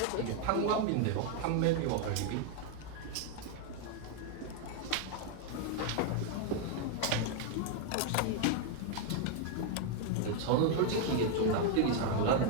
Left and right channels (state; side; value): different; both; correlation 0.00